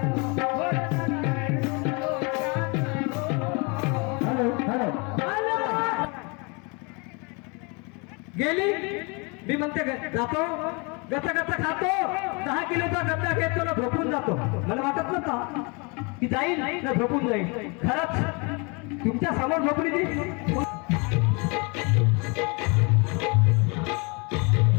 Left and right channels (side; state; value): right; quieter; 31.1 dB